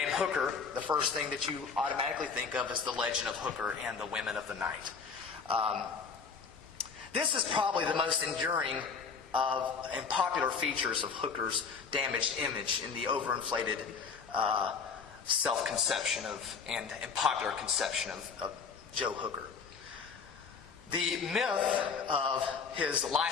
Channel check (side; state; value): right; quieter; 5.6 dB